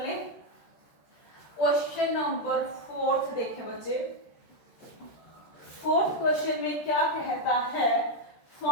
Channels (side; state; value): right; late; 13 ms